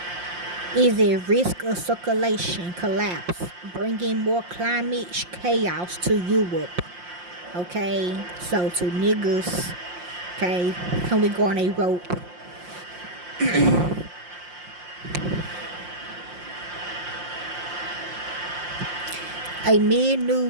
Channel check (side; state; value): left; late; 5.7 ms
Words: is at risk of circulation collapse, bringing more climate chaos to Europe. Okay, so to niggas, okay, can we go on a rope? Amid